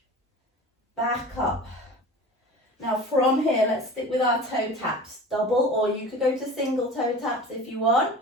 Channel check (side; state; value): both; normal; correlation 0.37